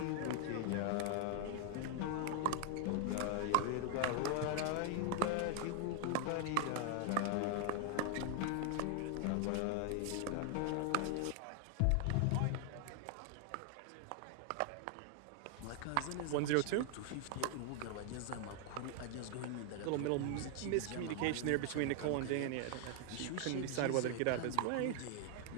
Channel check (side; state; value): both; different; correlation 0.00